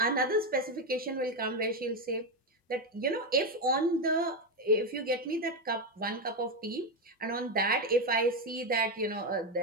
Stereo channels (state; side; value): normal; both; correlation 0.10